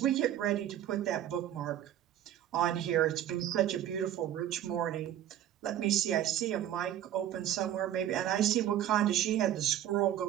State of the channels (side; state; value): left; quieter; 11.4 dB